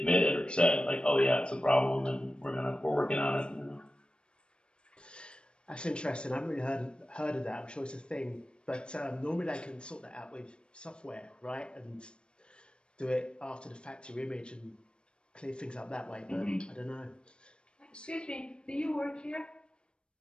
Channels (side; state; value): right; late; 0.054 ms